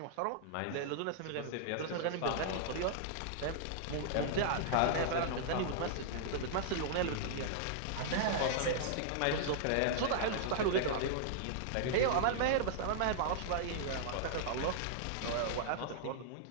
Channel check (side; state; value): both; different; correlation -0.01